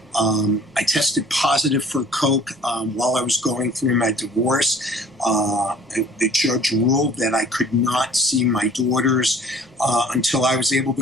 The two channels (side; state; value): both; normal; correlation 0.51